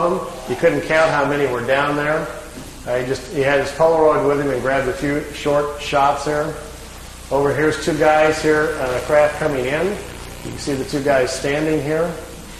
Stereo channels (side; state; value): both; identical; correlation 1.00